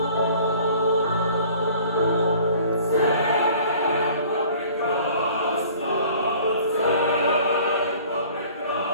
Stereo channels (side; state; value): both; inverted; correlation -0.50